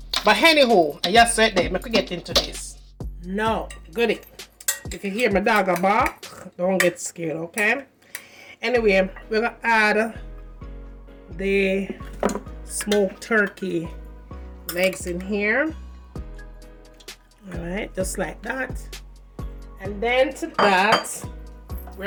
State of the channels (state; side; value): identical; both; correlation 1.00